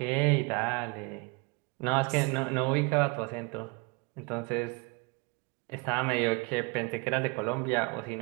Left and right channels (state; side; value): quieter; left; 29.8 dB